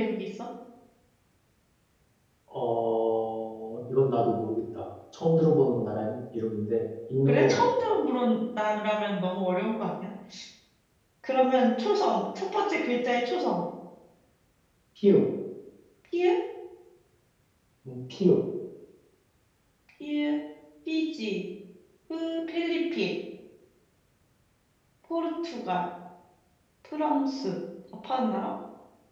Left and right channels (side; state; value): both; identical; correlation 1.00